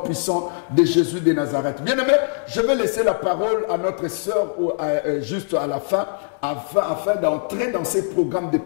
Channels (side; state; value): right; silent; 64 dB below the other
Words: de Jésus de Nazareth. Bien aimé, je vais laisser la parole à notre sœur juste à la fin, afin d'entrer dans ces programmes de